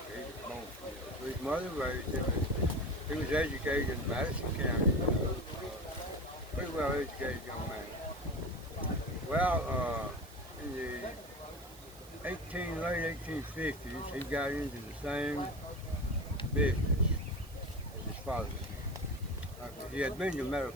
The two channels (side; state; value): right; noise; hiss, 21 dB below the sound